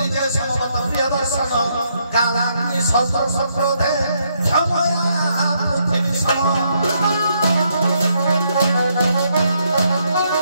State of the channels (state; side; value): inverted; both; correlation -0.75